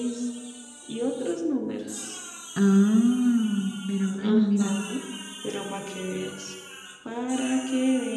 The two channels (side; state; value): both; identical; correlation 1.00